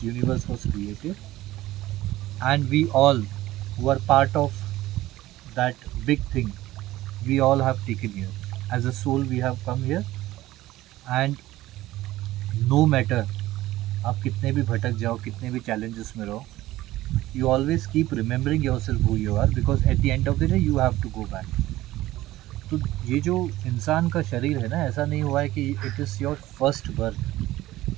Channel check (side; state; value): left; quieter; 16.1 dB